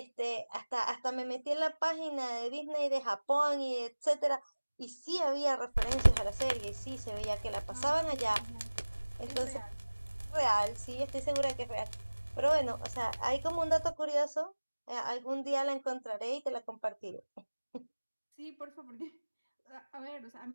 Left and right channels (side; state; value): both; inverted; correlation -1.00